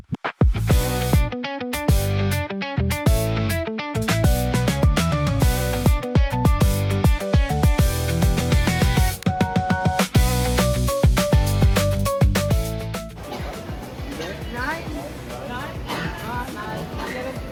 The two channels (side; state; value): both; identical; correlation 1.00